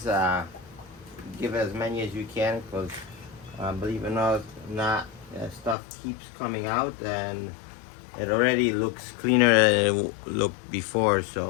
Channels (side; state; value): right; drops out; at 5.8 s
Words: give as many as you can, because believe it or not, stuff keeps coming out, and it already looks cleaner than it looked before.